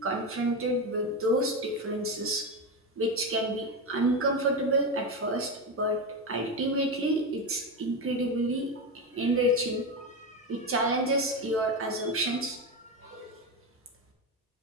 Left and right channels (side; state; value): both; normal; correlation 0.15